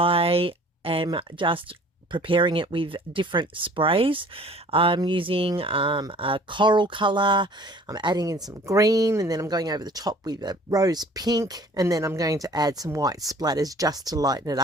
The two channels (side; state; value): both; normal; correlation 0.51